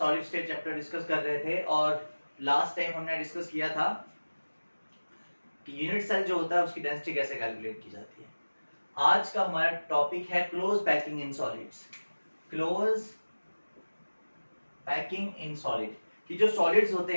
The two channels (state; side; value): inverted; both; correlation -1.00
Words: state chapter discuss कर रहे थे और लास्ट टाइम हमने डिस्कस किया था कि यूनिट सेल जो होता है उसकी डेंसिटी कैसे कैलकुलेट की जाती है। आज का हमारा टॉपिक है close packing in solids. Close packing in solid कि जो सॉलिड्स होते